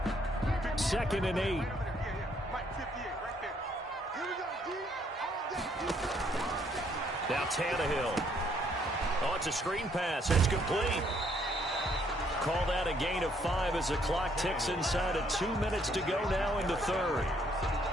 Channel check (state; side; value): normal; both; correlation 0.68